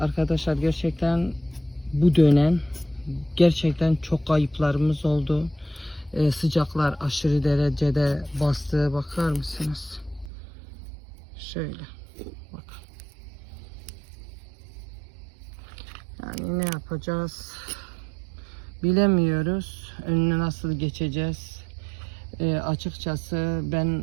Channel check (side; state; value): left; drops out; at 10.3 s